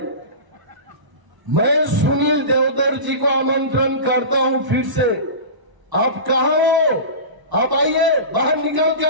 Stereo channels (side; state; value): left; late; 1.0 ms